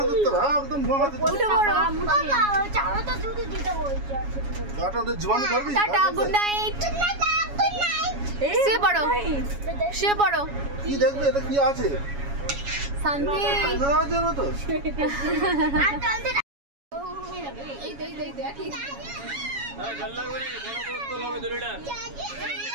যেতে হবে, একদম ভোমা দিতে। উঠে পড়ো। বাবা চামড়াটা দুধ দিতে বলছে। কাটা ওদের জীবাণু ধরবি। Tata, good night. শুয়ে পড়ো, শুয়ে পড়ো। কি দেখবে এটা কি আছে? শান্তি। না জানো তো। আর চলতে এই দেখি। আরে জল লাগবে নাকি? বড় বোতল হবে 2 লিটার।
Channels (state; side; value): late; left; 7.2 ms